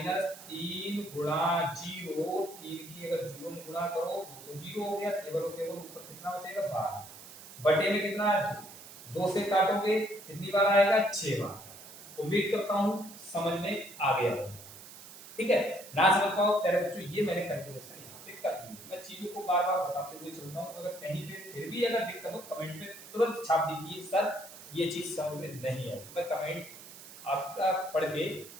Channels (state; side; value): noise; right; hiss, 16 dB below the sound